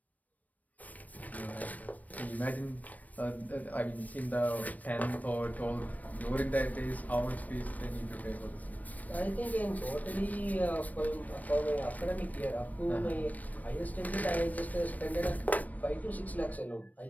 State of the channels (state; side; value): late; right; 0.075 ms